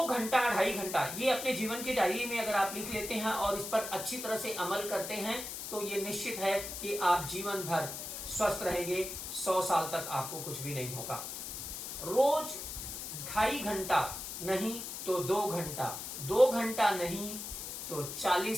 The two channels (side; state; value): left; noise; hiss, 7 dB below the sound